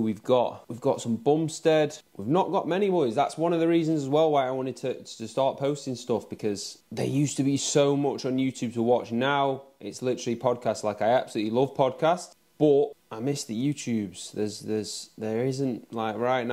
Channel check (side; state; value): both; identical; correlation 1.00